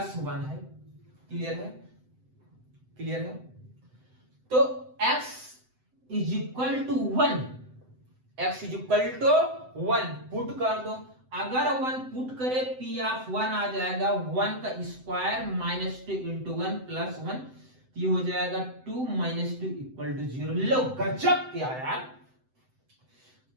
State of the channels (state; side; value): late; left; 7.8 ms